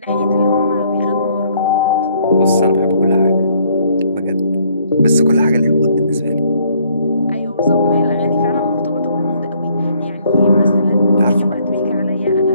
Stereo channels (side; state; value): both; inverted; correlation -0.65